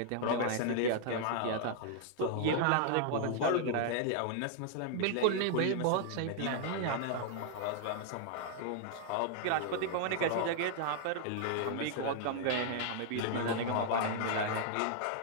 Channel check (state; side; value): different; both; correlation -0.01